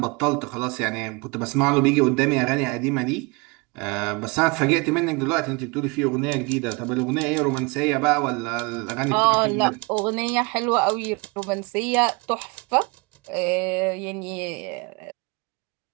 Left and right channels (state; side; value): quieter; left; 28.3 dB